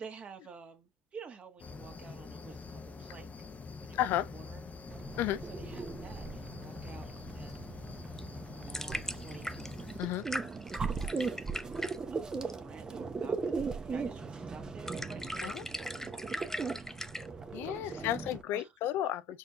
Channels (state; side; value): normal; both; correlation 0.59